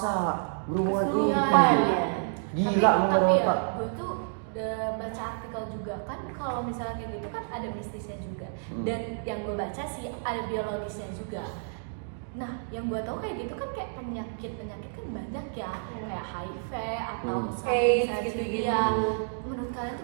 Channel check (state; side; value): silent; left; digital silence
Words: berhubungan Kesurupan gitu. ya. Gila tapi ya, Pak. gue tuh udah baca artikel juga kan kalau misalnya kayak gitu kan ada mistisnya juga. Dan yang gue baca sih ada biologisnya juga. Nah, yang gue tahu kayak gitu kan kayak penyakit kan banyak ya, kayak HIV atau AIDS misalnya gitu-gitu. ya. Menurut kalian